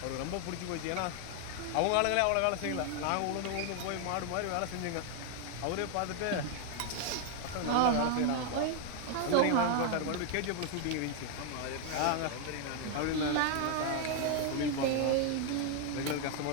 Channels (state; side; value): different; both; correlation 0.00